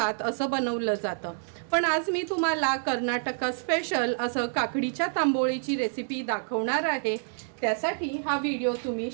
असं बनवलं जातं। पण आज मी तुम्हाला कर्नाटक स्पेशल असं काकडीच्या तांबोळीची रेसिपी दाखवणार आहे। त्यासाठी हा व्हिडिओ तुम्ही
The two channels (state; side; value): silent; left; digital silence